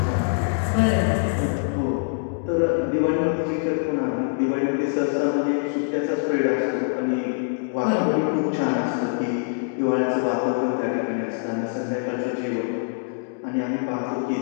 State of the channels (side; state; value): right; silent; digital silence